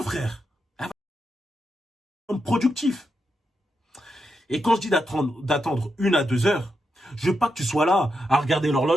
frère. Productif. Et quand je dis d'attendre 1 à 2 heures, je veux pas que tu sois là à regarder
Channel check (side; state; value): both; normal; correlation 0.85